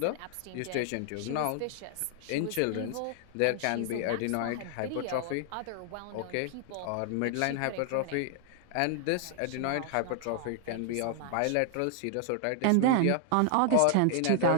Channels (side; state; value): both; different; correlation 0.00